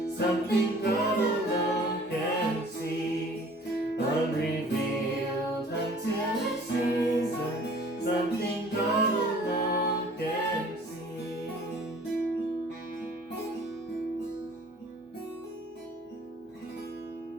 something God alone can see, unrevealed until it's season, something God alone can see.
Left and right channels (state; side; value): normal; both; correlation 0.51